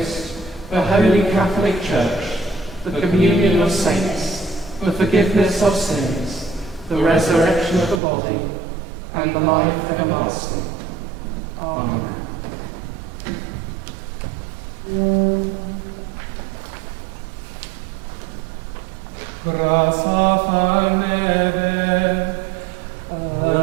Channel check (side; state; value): left; drops out; at 8.0 s